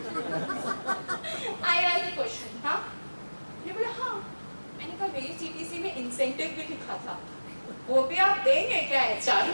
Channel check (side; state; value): both; inverted; correlation -1.00